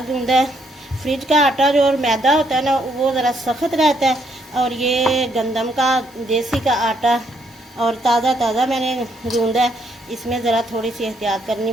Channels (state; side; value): normal; both; correlation 0.72